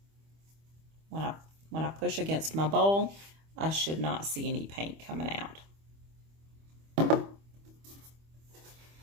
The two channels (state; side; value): late; left; 25 ms